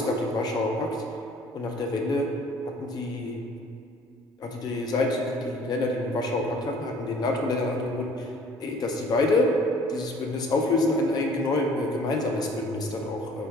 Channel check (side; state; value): both; normal; correlation 0.53